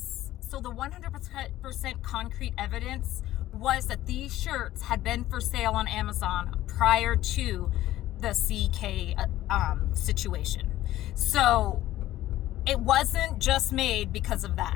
So the 100% concrete evidence was that these shirts had been for sale on Amazon prior to the CK situation. So it wasn't just made because of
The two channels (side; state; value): right; quieter; 14.6 dB